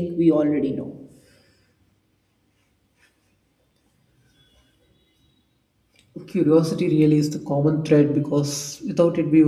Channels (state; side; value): identical; both; correlation 1.00